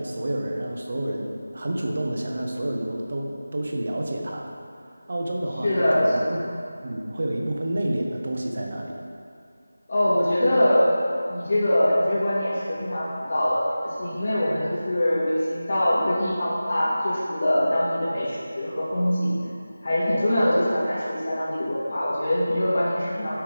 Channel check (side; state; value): both; inverted; correlation -0.96